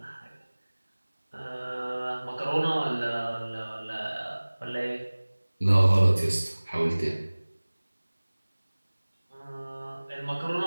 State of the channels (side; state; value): both; inverted; correlation -1.00